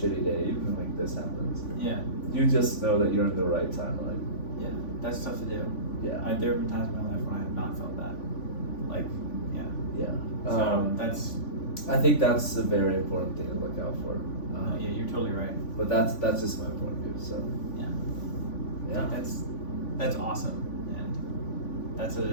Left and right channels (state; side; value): late; right; 3.5 ms